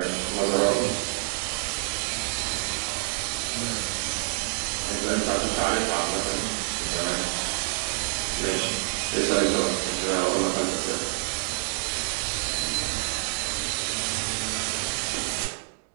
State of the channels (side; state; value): left; silent; 59 dB below the other